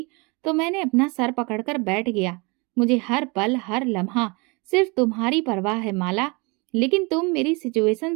तो मैंने अपना सर पकड़कर बैठ गया। मुझे हर पल हर लम्हा सिर्फ तुम्हारी परवाह है माला, लेकिन तुम मेरी सिचुएशन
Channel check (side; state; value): left; quieter; 28.8 dB